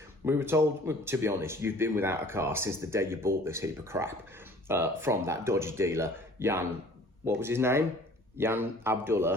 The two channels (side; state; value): both; normal; correlation 0.51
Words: We were told, to be honest, you've been without a car since the day you bought this heap of crap from that dodgy dealer, Jan, what was his name? Jan